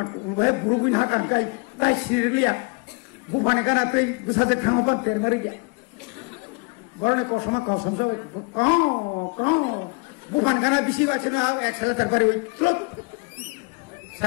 wahai burubin hakan kai tai sirliya bufane kana tai busaje thangoban termari ge borone kosoma kosam so ko bufan kana bisi wachina excel terpari oi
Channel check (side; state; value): right; quieter; 30.0 dB